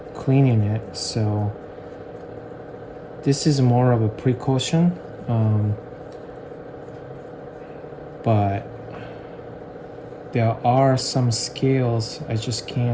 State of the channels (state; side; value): identical; both; correlation 1.00